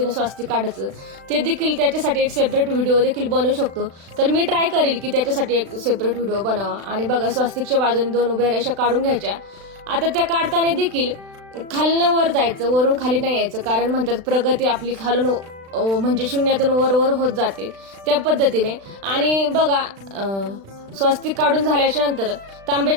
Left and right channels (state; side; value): late; left; 36 ms